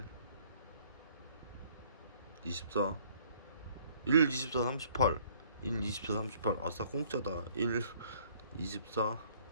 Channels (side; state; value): both; inverted; correlation -0.59